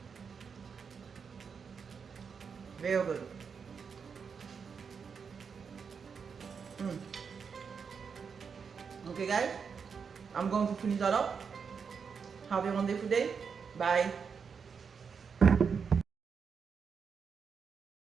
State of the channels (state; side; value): quieter; left; 6.1 dB